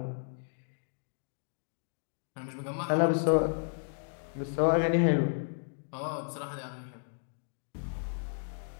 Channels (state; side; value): silent; right; digital silence